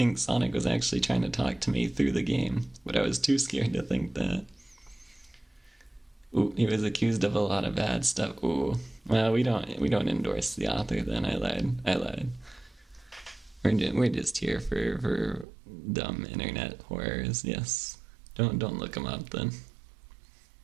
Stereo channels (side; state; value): left; drops out; at 15.5 s